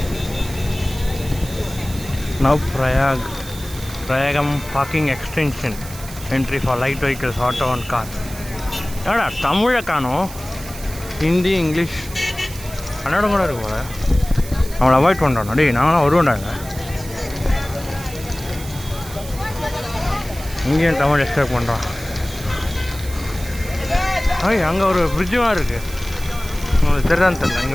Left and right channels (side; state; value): right; noise; hiss, 15 dB below the sound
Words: Now Prayagam parking extension entry for light vehicles, auto and car. ஏடா தமிழை காணும், ஹிந்தி இங்கிலீஷ் கன்னடம் கூட இருக்கு போல. அவங்கள அவாய்ட் பண்ணுறோம். டேய் நாங்களாம் வருவோண்டாங்க. இங்கேயும் தமிழ் எக்ஸ்பெக்ட் பண்ணுறோம். அங்கே ஒரு பிரிட்ஜும் இருக்குது, உங்களுக்கு தெரியாதுன்னு தெரியல.